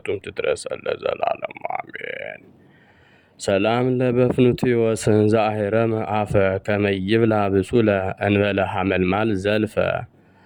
ትድረሰን ለዘላለሙ አሜን። ሰላም ለበፍኑትዮስ ዘአሕረመ አፈ ከመይብላ ብሱለ እንበለ ሐመልማል ዘልፈ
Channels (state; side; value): identical; both; correlation 1.00